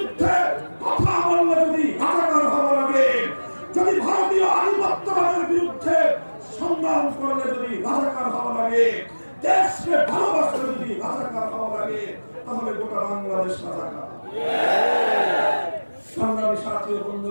কথা বললে যদি রাজাকার হওয়া লাগে, যদি ভারতীয় আধিপত্যবাদের বিরুদ্ধে সংগ্রাম করলে যদি রাজাকার হওয়া লাগে, দেশকে ভালোবাসলে যদি রাজাকার হওয়া লাগে, তাহলে গোটা বাংলাদেশ রাজাকার। সংগ্রামী সাথী ও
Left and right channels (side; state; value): both; inverted; correlation -1.00